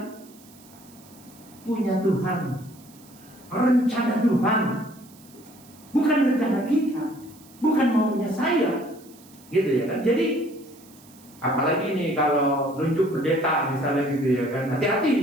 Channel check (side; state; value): right; noise; hiss, 25 dB below the sound